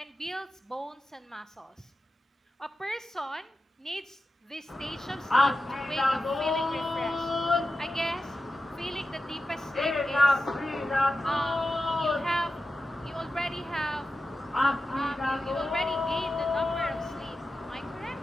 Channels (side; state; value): both; normal; correlation 0.92